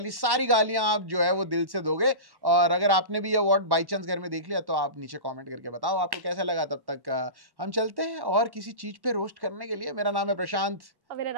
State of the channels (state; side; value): late; left; 1.1 ms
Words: सारी गालियां आप जो है वो दिल से दोगे। और अगर आपने भी ये अवार्ड बाई चांस घर में देख लिया तो आप नीचे कमेंट करके बताओ आपको कैसा लगा। तब तक हम चलते हैं और किसी चीज पे रोस्ट करने के लिए। मेरा नाम है प्रशांत और मेरा